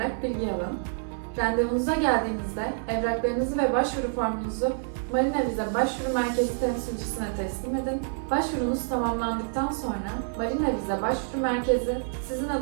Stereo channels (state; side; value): silent; left; digital silence